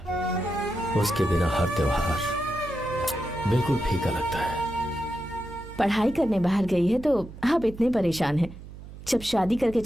उसके बिना हर त्योहार बिल्कुल फीका लगता है। पढ़ाई करने बाहर गई है तो आप इतने परेशान हैं। जब शादी करके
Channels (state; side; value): noise; right; hum, 15 dB below the sound